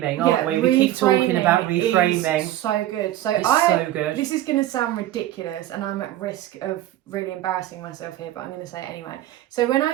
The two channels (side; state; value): left; quieter; 13.9 dB